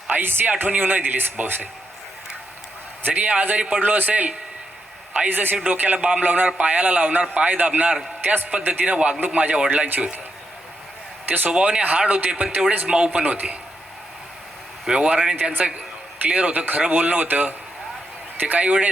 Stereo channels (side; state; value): both; normal; correlation 0.83